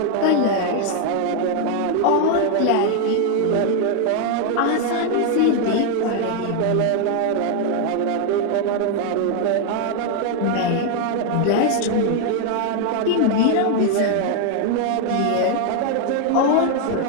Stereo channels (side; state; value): both; different; correlation 0.00